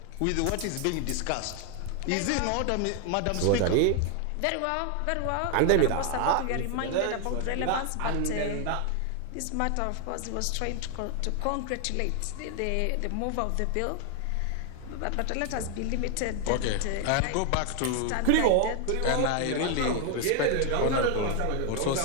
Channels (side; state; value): both; different; correlation 0.01